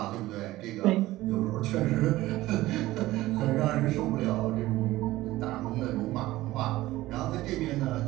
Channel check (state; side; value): quieter; left; 17.0 dB